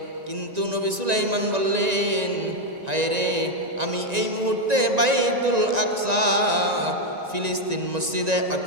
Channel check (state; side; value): late; left; 1.9 ms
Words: কিন্তু নবী সুলাইমান বললেন, হায় রে, আমি এই মুহূর্তে বাইতুল আকসা ফিলিস্তিন মসজিদে